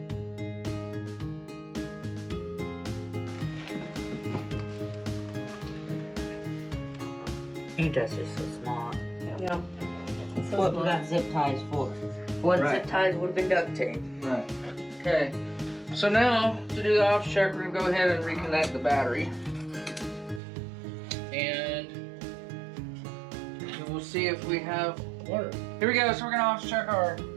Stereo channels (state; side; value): drops out; left; at 20.4 s